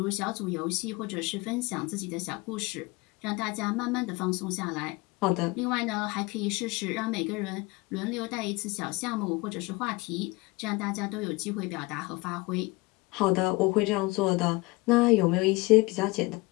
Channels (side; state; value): right; quieter; 23.8 dB